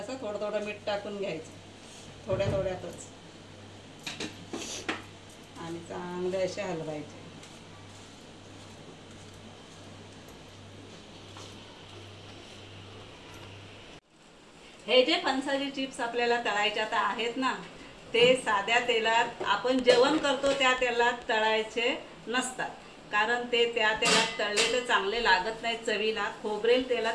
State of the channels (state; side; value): identical; both; correlation 1.00